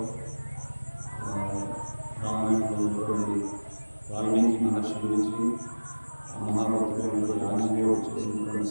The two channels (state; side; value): inverted; both; correlation -1.00